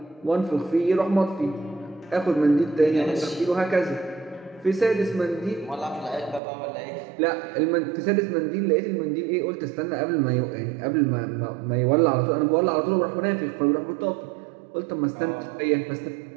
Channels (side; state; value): left; drops out; at 6.4 s